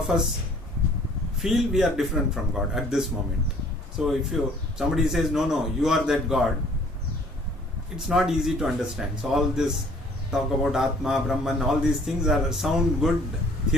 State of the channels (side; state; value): both; normal; correlation 0.56